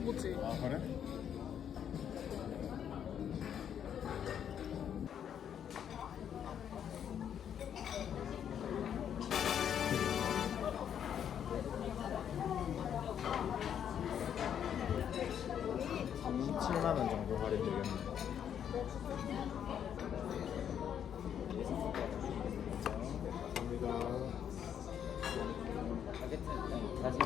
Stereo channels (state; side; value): quieter; right; 9.0 dB